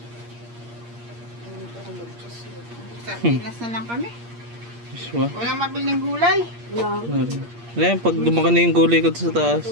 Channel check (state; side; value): late; left; 8.6 ms